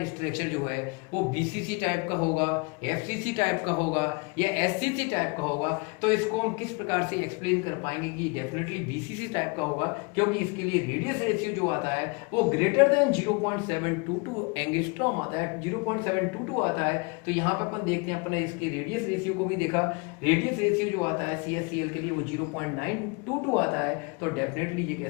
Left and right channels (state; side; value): quieter; right; 30.4 dB